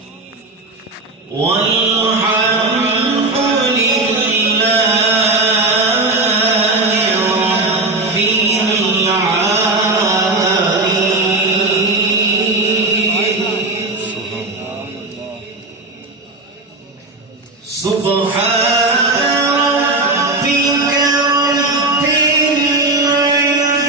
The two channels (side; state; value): left; quieter; 3.0 dB